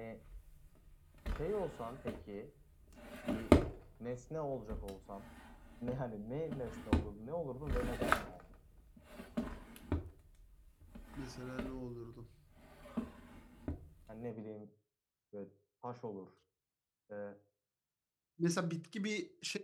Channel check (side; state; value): both; identical; correlation 1.00